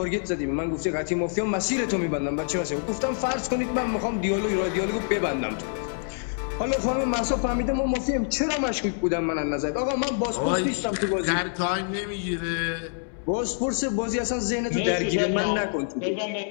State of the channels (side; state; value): right; silent; digital silence